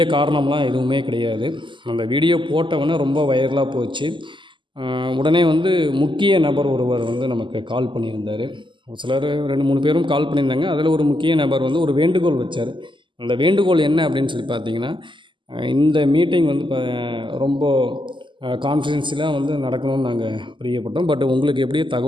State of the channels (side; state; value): left; late; 0.24 ms